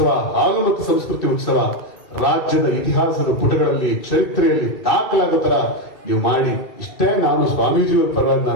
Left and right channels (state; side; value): late; right; 2.3 ms